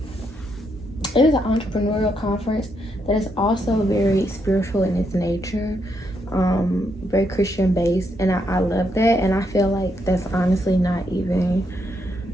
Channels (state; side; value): normal; both; correlation 0.78